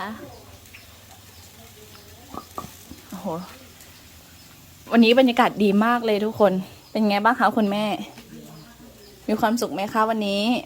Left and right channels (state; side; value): identical; both; correlation 1.00